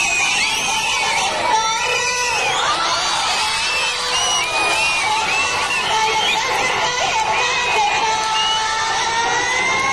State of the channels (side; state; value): left; noise; rumble, 19 dB below the sound